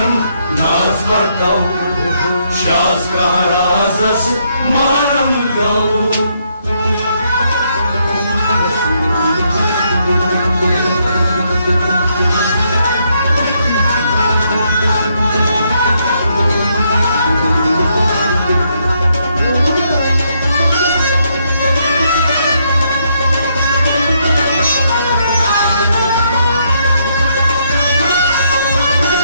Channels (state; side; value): inverted; both; correlation -0.74